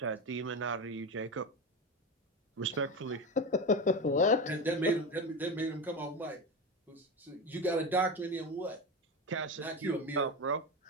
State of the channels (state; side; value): normal; both; correlation 0.21